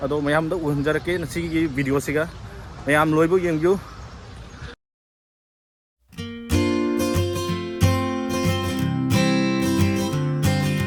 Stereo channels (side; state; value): both; identical; correlation 1.00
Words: Ado mayam da uhanjarake nasi gi video siga. Mayam loibo yengyu.